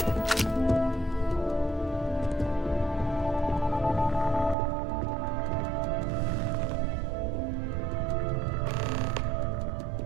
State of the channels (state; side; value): drops out; left; at 4.5 s